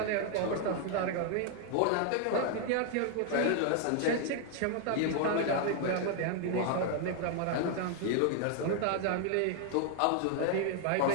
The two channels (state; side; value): different; both; correlation 0.00